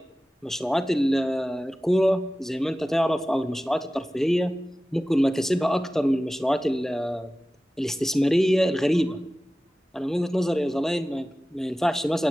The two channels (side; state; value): both; normal; correlation 0.96